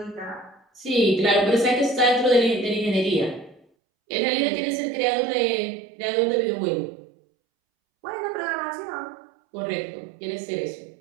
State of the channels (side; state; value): left; drops out; at 3.6 s